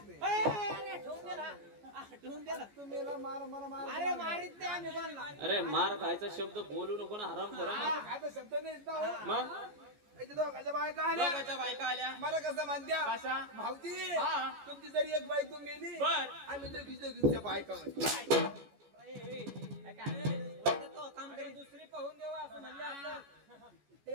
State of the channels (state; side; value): late; left; 14 ms